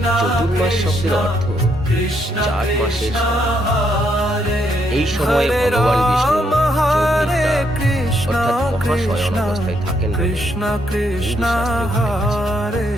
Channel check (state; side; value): normal; both; correlation 0.75